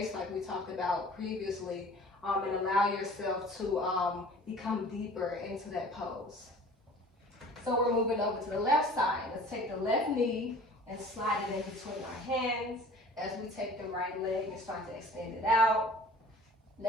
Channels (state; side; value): normal; both; correlation 0.46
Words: like we talked about previously, and allow yourself to become deeper into that pose. So we're moving over to the left side. Let's take the left knee and slide it in between our hands as we take the right leg and start to extend it out.